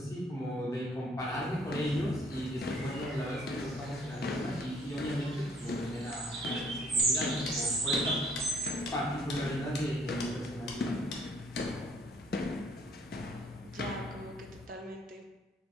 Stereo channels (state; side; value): normal; both; correlation 0.61